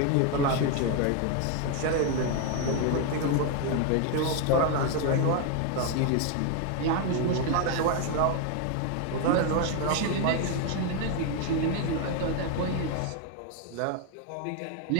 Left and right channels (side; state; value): both; different; correlation 0.01